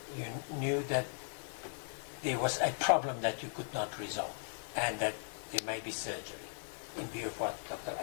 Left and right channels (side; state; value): right; silent; digital silence